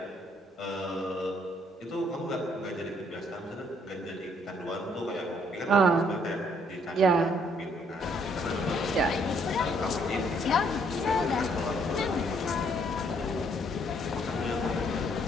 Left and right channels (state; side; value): normal; both; correlation 0.67